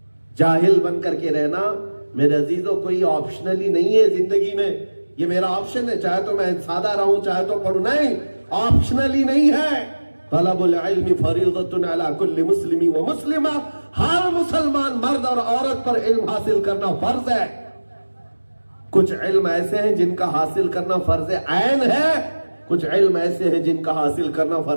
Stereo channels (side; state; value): both; inverted; correlation -1.00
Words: جاہل بن کر کے رہنا میرے عزیزوں کوئی آپشنلی نہیں ہے زندگی میں، یہ میرا آپشن ہے، چاہے تو میں سادہ رہوں چاہے تو پڑھوں، نہیں، آپشنلی نہیں ہے۔ طلب العلم فریضۃ علی کل مسلم و مسلمہ، ہر مسلمان مرد اور عورت پر علم حاصل کرنا فرض ہے۔ کچھ علم ایسے ہیں جن کا حاصل کرنا فرض عین ہے، کچھ علم ایسے ہیں جن کا حاصل کرنا